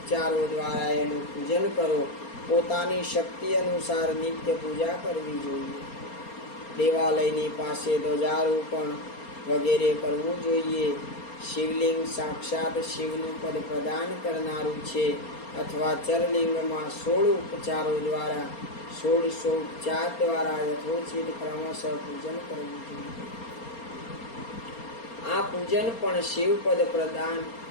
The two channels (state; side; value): late; right; 4.3 ms